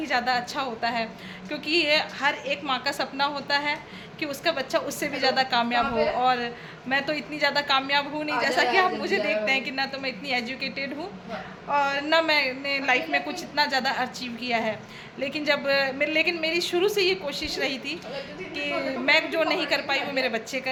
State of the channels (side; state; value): both; identical; correlation 1.00